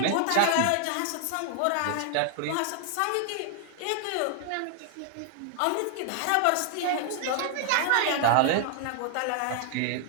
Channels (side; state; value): both; different; correlation 0.00